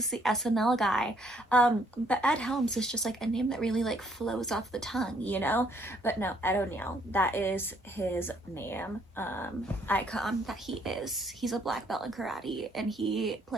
the SNL guy. But Ed Helms is just, like, a name that really, like, flows off the tongue, you know? But no, Ed O'Neill, that is his name, icon that he is. He's a black belt in karate, and he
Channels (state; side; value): normal; both; correlation 0.67